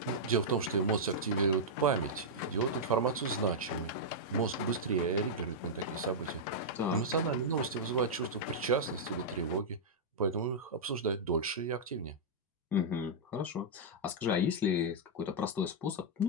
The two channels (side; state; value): both; normal; correlation -0.08